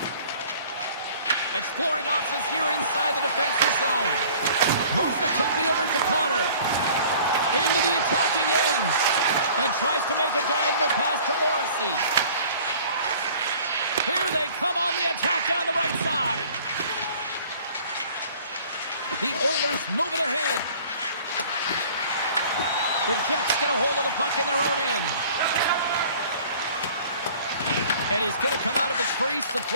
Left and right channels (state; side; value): inverted; both; correlation -0.50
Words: Exploring options here inside the defensive zone. Moves it quickly over to Connor. Into the attacking end. And tries to make a diagonal pass to Morrissey. Here they come on the attack down the right side. The Oilers move it ahead. The Jets get a hold of the puck in their own end. And he's going to come out of his crease to